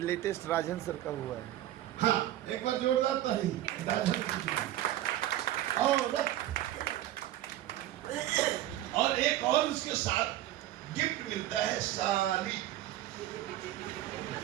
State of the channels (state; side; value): quieter; left; 13.8 dB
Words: लेटेस्ट राजन सर का हुआ है। हाँ, एक बार जोरदार ताली। औरत। और एक और उसके साथ गिफ्ट मिलता है, साली।